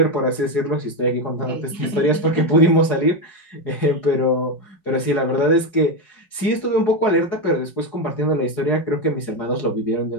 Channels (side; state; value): right; late; 5.3 ms